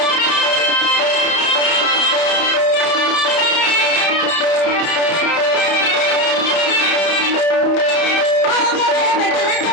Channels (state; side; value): late; right; 31 ms